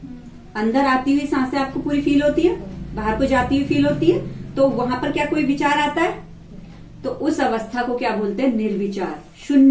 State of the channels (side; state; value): both; identical; correlation 1.00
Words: अंदर आती हुई सांसें आपको पूरी फील होती है, बाहर को जाती हुई फील होती है, तो वहां पर क्या कोई विचार आता है, तो उस अवस्था को क्या बोलते हैं, निर्विचार,